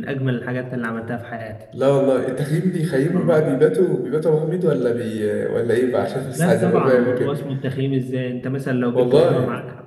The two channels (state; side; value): identical; both; correlation 1.00